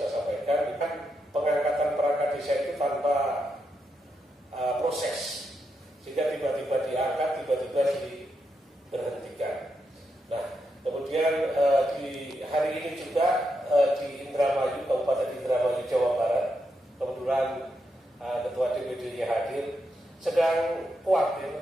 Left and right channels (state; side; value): normal; both; correlation 0.83